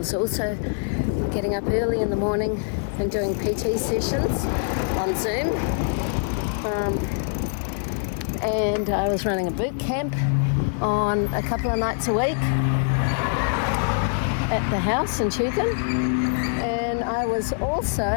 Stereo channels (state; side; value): silent; right; 63 dB below the other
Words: also getting up early in the morning and doing PT sessions on Zoom. And I was running a boot camp on a couple of nights a week at the house in Tugun. And I was